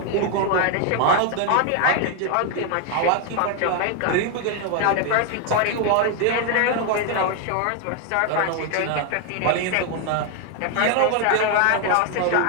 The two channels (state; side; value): different; both; correlation 0.01